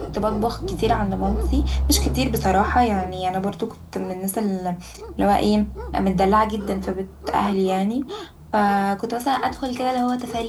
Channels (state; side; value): identical; both; correlation 1.00